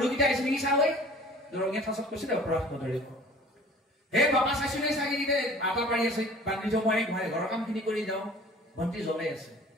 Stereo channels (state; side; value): normal; both; correlation 0.47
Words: আহিছে নেকি চাবই, দৰঙীয়া ঠাচত কৈছে দে অপৰাধ নধৰি। হে বাপা চাইছো নে ছাগলীকেইটা আটা পাৰি আছে, বান্ধি যাওঁ মই গোহাঁই ঘৰৰ কামখিনি কৰি যাওঁ, বন্তি জ্বলাই আছে।